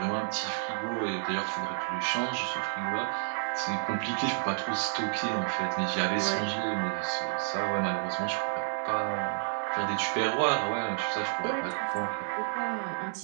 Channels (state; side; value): silent; left; 58 dB below the other